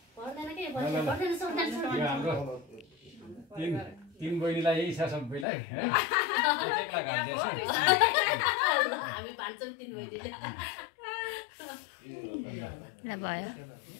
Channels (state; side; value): drops out; right; at 5.5 s